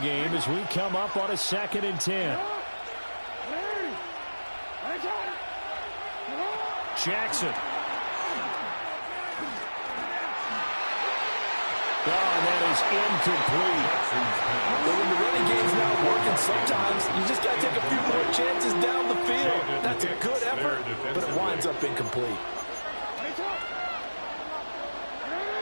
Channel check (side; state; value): both; inverted; correlation -1.00